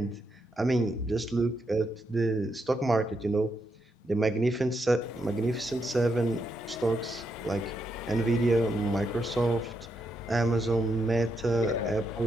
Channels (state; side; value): normal; both; correlation 0.81